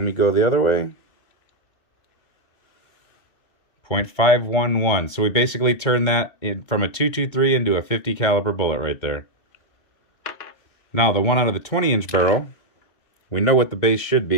me go the other way. 0.511. So we basically turned that from a .223 into a 50 caliber bullet right there. Now the one out of the 20-inch barrel, we know what the base should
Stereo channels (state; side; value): late; right; 2.2 ms